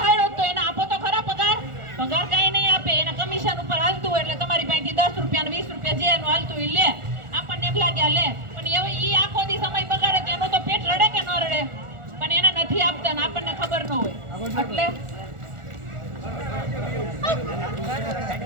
તો એને આપો તો ખરા પગાર. પગાર કઈ નહીં આપે, એના કમિશન ઉપર હાલતું હોય, એટલે તમારી પાસેથી 10 રૂપિયા 20 રૂપિયા જે એનું હાલતું એ લે. આપણને એમ લાગ્યા લે, પણ હવે ઈ આખો દી સમય બગાડે તો એનું તો પેટ રડે કે ન રડે, પણ એને નથી આપતા ને આપણને ખબર ન હોય. એટલે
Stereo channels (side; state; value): left; late; 1.4 ms